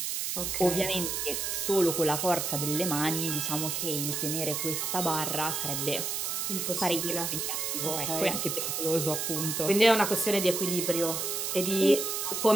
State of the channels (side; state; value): right; noise; hiss, 1 dB below the sound